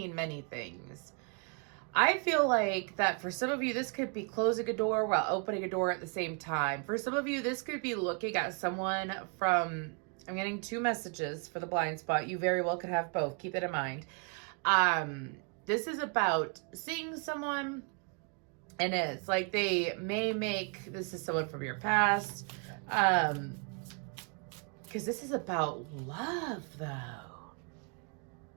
many things. I feel like that for some of you, this could be closing a door while opening a door at the same time. For some of you, this could be looking at someone from, I'm getting two messages for the blind spot. You very well could have both. Keep it in mind. This is about seeing someone, and it's like they may make, this is someone from your past, because this is about love, though.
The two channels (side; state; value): left; quieter; 38.0 dB